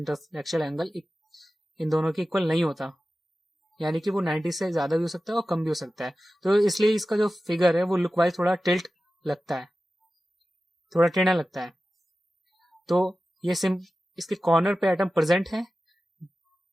एंगल इन दोनों के इक्वल नहीं होता, यानी कि वो 90 से ज्यादा भी हो सकता है और कम भी हो सकता है. तो इसलिए इसका जो फिगर है वो लुक वाइज थोड़ा टिल्ट लगता है, थोड़ा टेढ़ा लगता है. तो ये इसके कॉर्नर पे एटम प्रेजेंट है,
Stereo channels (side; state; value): both; normal; correlation 0.95